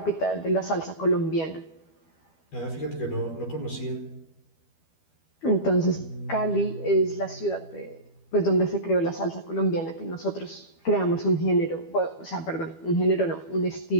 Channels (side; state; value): right; late; 12 ms